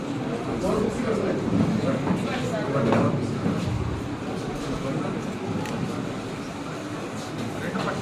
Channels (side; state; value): both; identical; correlation 1.00